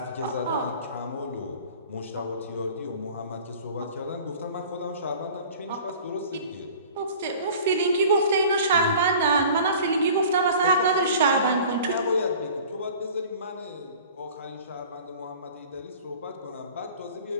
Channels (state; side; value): inverted; both; correlation -0.45